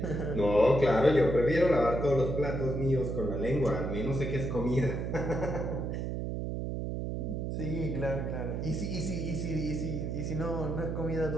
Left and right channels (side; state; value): right; noise; hum, 3 dB below the sound